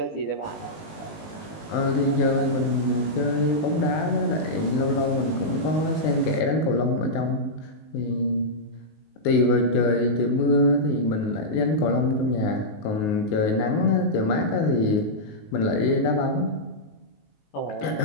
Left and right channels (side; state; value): right; late; 19 ms